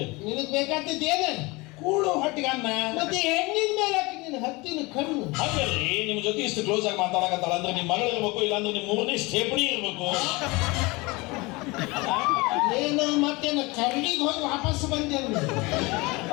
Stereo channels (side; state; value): right; quieter; 24.2 dB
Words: ನಿನಗ್ ಬೇಕಾದದ್ದೇನು ಕೂಳು ಹೊಟ್ಟಿಗೆ ಅನ್ನ ಮತ್ತೆ ಹೆಣ್ಣಿನ ಮೇಲೆ ನಿನ್ನ ಹತ್ತಿನ ಕಣ್ಣು ಹಾಗಲ್ರಿ ನಿಮ್ ಜೊತೆ ಇಷ್ಟು ಕ್ಲೋಸ್ ಆಗಿ ಮಾತಾಡಕತ್ತಾಳ ಅಂದ್ರೆ ನಿಮ್ ಮಗಳು ಇರ್ಬೇಕು ಇಲ್ಲಾಂದ್ರೆ ನಿಮ್ ಮೂರನೇ ಸ್ಟೇಪಣಿ ಇರ್ಬೇಕು ಏನು ಮತ್ತೇನು ಕರಡಿಗೆ ಹೋಗಿ ವಾಪಸ್ ಬಂದೆ